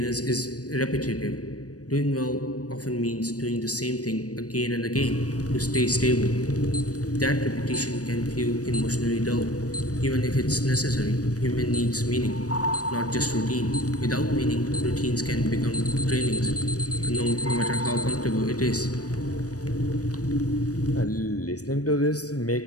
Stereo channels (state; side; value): late; right; 0.67 ms